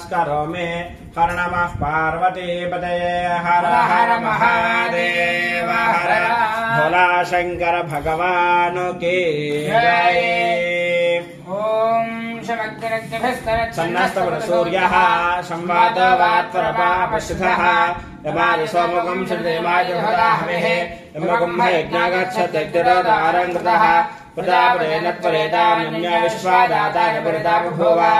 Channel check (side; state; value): both; identical; correlation 1.00